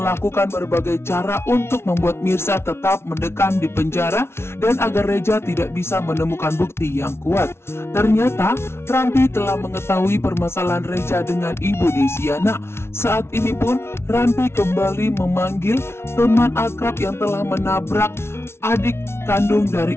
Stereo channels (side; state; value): right; late; 0.12 ms